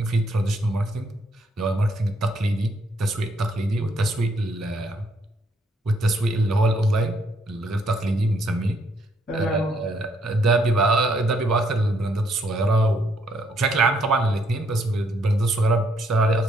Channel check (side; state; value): both; normal; correlation 0.71